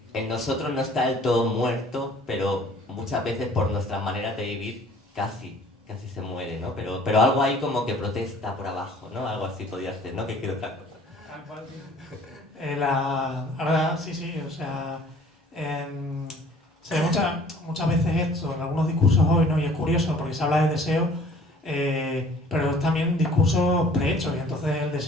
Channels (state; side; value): normal; both; correlation 0.53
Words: en nosotros no está del todo muerto, pero muchas veces por nuestras maneras de vivir casi se muere, ¿no? Pero algo ahí como que protesta por abajo, ¿no? Algo así podría ser, ¿no? Que quiero otra cosa. Ahora sí, o sea, se ve muchas veces esto en algunos discursos hoy, ¿no? Y es curioso porque se habla de deseo, pero es también discursos prehechos, y entonces el